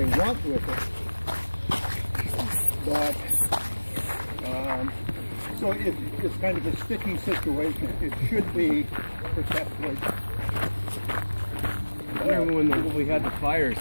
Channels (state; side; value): inverted; both; correlation -1.00